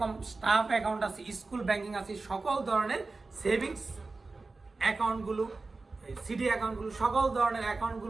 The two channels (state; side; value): quieter; left; 3.7 dB